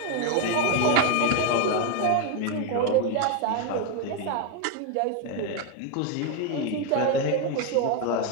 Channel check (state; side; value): different; both; correlation 0.01